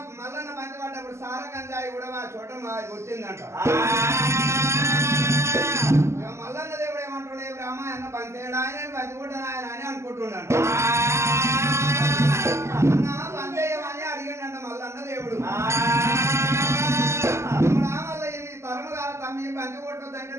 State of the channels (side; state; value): left; late; 0.13 ms